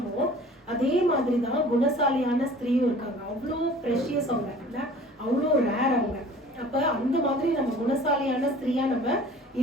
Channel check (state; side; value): normal; both; correlation 0.47